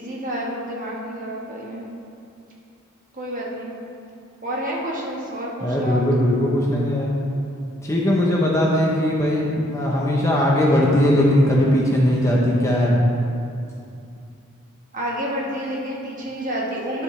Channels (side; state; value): both; normal; correlation 0.68